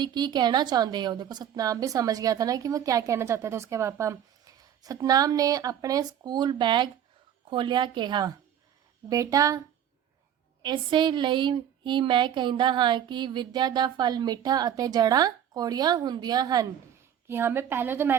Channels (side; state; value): left; quieter; 9.8 dB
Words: की कहना चाहते हो। देखो सतनाम भी समझ गया था ना कि वो क्या कहना चाहते थे उसके पापा। सतनाम ने अपने स्कूल बैग खोलिया कहा, बेटा इसे ਲਈ ही मैं कहता हाँ कि विद्या दा फल मिठा ਅਤੇ जड़ा कौड़ियाँ ਹੁੰਦੀਆਂ ਹਨ, कि हमें पहले तो